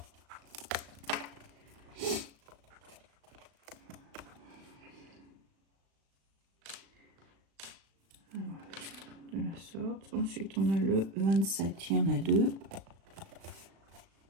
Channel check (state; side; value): late; left; 36 ms